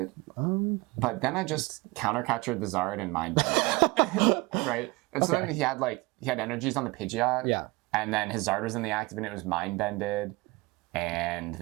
But then I just counter captured the Zard and Mind Bended it. Right? And so then he had energies on the Pidgeot. Yeah. And then his Zard was in the active and it was Mind Bended. And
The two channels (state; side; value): quieter; left; 23.8 dB